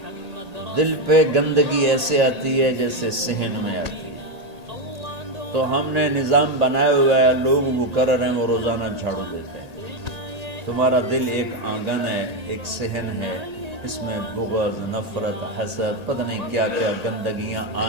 دل پہ گندگی ایسے آتی ہے جیسے صحن میں آتی ہے۔ تو ہم نے نظام بنایا ہوا ہے، لوگ وہ کر رہے ہیں، وہ روزانہ جھاڑو دیتے ہیں۔ تمہارا دل ایک آنگن ہے، ایک صحن ہے، اس میں بغض، نفرت، حسد، پتہ نہیں کیا کیا گندگیاں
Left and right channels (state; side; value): late; left; 1.8 ms